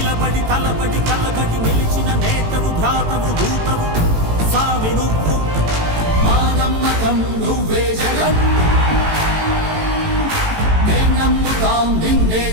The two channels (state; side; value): late; left; 18 ms